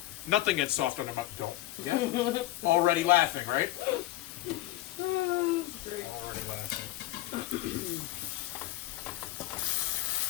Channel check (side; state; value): right; quieter; 16.2 dB